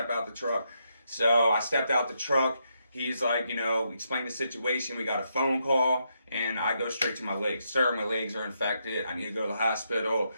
out the truck. So I stepped out the truck. He's like, explain the situation. We got a phone call, and I go straight to my legs. Sir, my legs are infected. I need to go to the hospital.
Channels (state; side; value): inverted; both; correlation -0.80